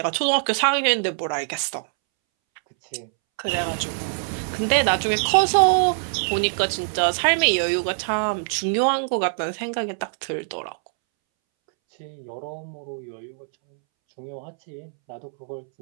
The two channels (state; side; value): silent; left; 63 dB below the other